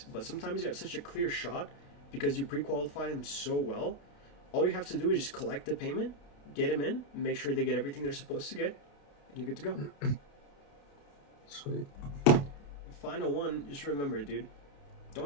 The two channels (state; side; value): late; right; 28 ms